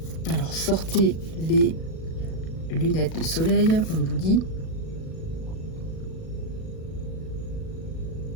Alors sortez les lunettes de soleil, on vous dit.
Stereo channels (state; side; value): late; right; 37 ms